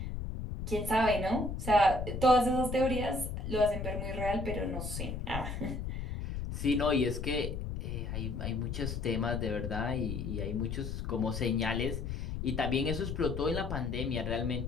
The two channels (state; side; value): noise; left; rumble, 4 dB below the sound